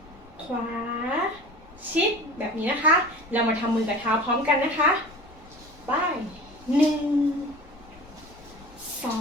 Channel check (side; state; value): left; noise; rumble, 23 dB below the sound